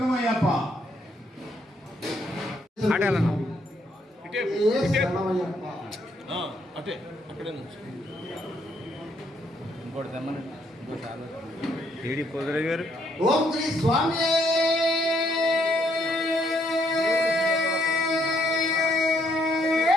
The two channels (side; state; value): both; normal; correlation 0.71